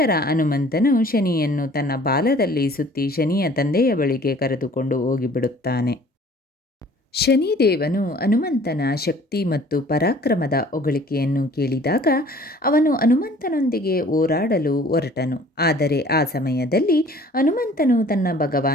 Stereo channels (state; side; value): normal; both; correlation 0.52